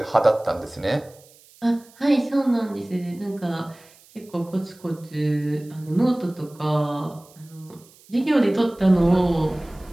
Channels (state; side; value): noise; right; hiss, 27 dB below the sound